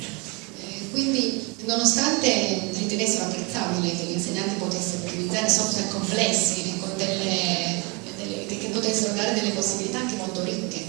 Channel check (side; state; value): left; quieter; 29.4 dB